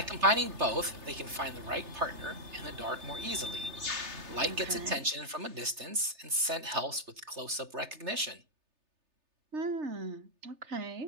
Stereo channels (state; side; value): late; left; 3.3 ms